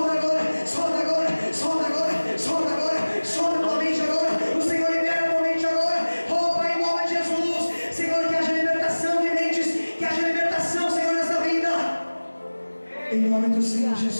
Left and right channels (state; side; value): inverted; both; correlation -1.00